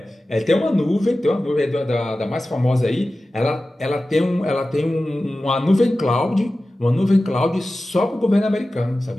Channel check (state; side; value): normal; both; correlation 0.95